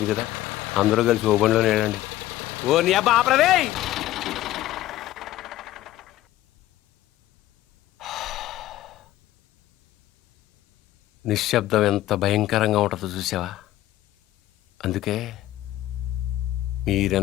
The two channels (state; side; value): quieter; right; 14.9 dB